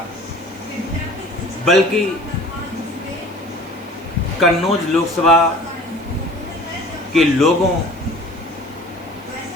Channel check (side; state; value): right; noise; hiss, 27 dB below the sound